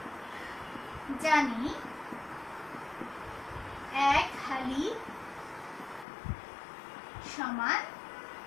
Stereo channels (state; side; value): drops out; right; at 6.1 s